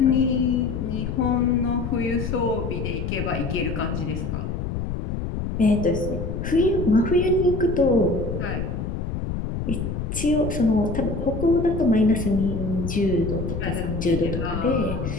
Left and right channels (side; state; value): left; noise; rumble, 4 dB below the sound